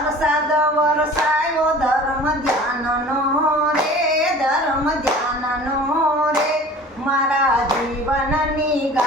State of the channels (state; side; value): normal; both; correlation 0.44